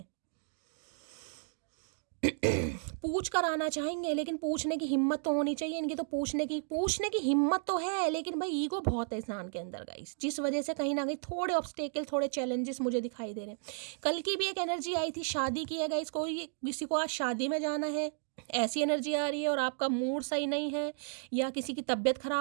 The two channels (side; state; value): left; silent; digital silence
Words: पूछ कर आना चाहेंगे, लेकिन पूछने की हिम्मत तो होनी चाहिए इनकी। तो पूछने की हिम्मत तो है, लेकिन भाई ईगो बहुत है इंसान के अंदर गाइस, जिस वजह से कहीं ना कहीं थोड़े ऑब्स्टेकल, थोड़े चैलेंजेस मुझे दिखाई दे रहे हैं। कल की भी एक एनर्जी आई थी, शादी की है गाइस, कोई किसी को आज शादी में जाना है, ऐसी एनर्जी आ रही है, और आपका मूड सही नहीं है, या किसी की तबीयत